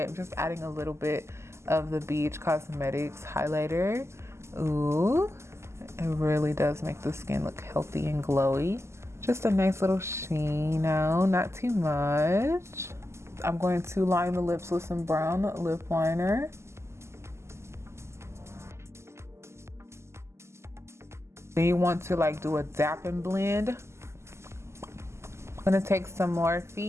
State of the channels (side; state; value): left; late; 0.13 ms